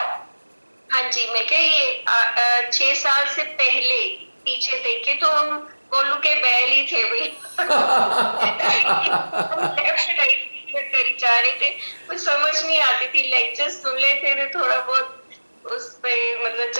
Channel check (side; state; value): both; inverted; correlation -1.00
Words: हाँ जी, मैं क्या ये 6 साल से पहले पीछे देखे तो हम कोलू के बैल ही थे भाई। लेफ्ट राइट करी जा रहे थे, कुछ समझ नहीं आती थी, लेक्चर्स सुन लेते थे, थोड़ा बहुत उस पे मतलब